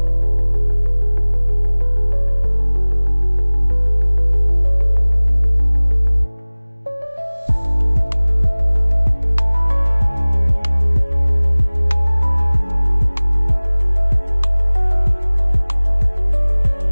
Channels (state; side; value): inverted; both; correlation -1.00